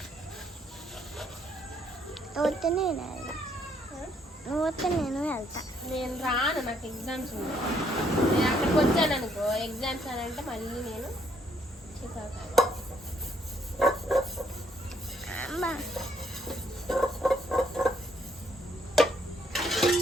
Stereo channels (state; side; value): normal; both; correlation 0.69